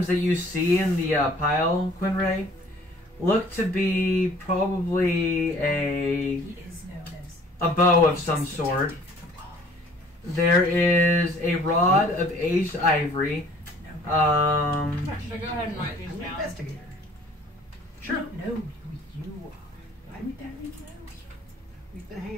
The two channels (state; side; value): normal; both; correlation 0.54